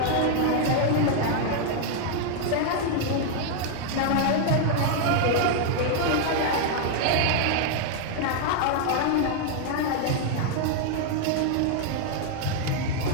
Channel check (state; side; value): different; both; correlation 0.00